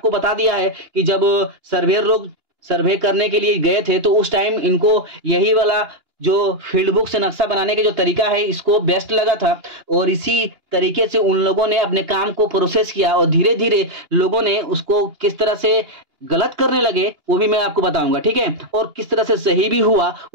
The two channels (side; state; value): left; late; 2.9 ms